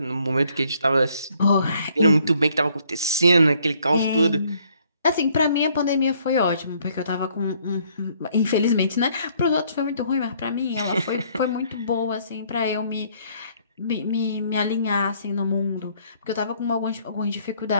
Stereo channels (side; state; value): both; inverted; correlation -0.65